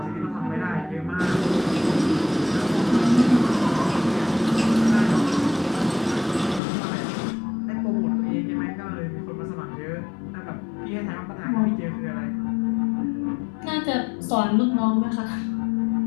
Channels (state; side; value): drops out; right; at 6.6 s